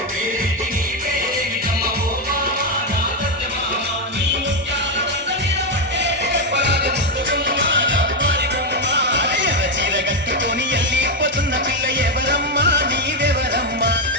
పేరేంటి నీ పేరేమిటమ్మ ఓ బామా నా సత్యభామ నీ ముత్యాల దండ మీద కొట్టేసి చెప్పరాది ముద్దు గుమ్మ రగారి బొమ్మ ఎర్ర చీర కట్టుకొని ఎల్లిపోతున్న పిల్ల ఎవరమ్మా నీవెవరమ్మా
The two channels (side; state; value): both; normal; correlation 0.06